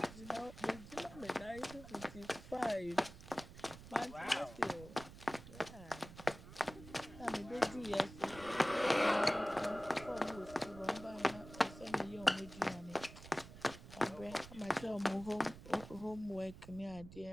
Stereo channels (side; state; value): right; noise; rumble, 15 dB below the sound